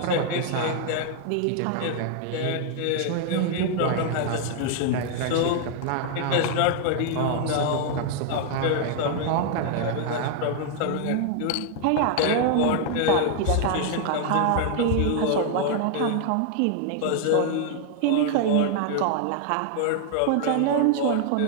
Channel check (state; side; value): different; both; correlation 0.00